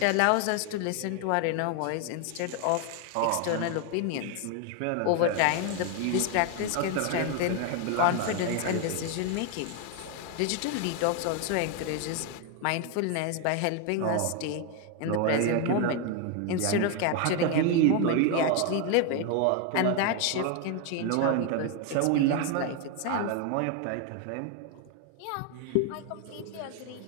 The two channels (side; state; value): both; different; correlation 0.01